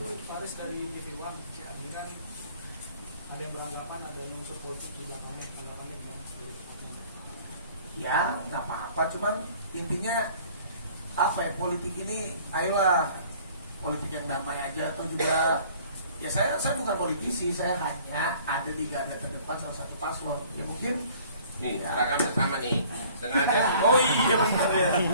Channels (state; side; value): inverted; both; correlation -0.53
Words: Faris dari TV One, ini kan ada yang beranggapan ada unsur politik di belakangnya, tanggapannya gimana? Ya nggak apa-apa, cuman intinya apa ya, politik ini ayolah politik yang damai aja. Atau juga ya saya bukan politisi, saya hanya ada di garda terdepan salah satu paslon. Ya mungkin nih, ya. seragamnya sama nih. Sengaja. Oh iya benar ya.